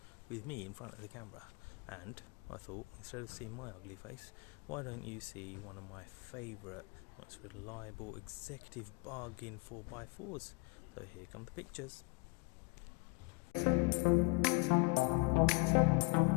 with me in front of the camera, and I thought instead of seeing my ugly face, why don't you see one of my favourite, most reliable executive bargain 4x4s. So here come the pictures.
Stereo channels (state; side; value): quieter; right; 29.5 dB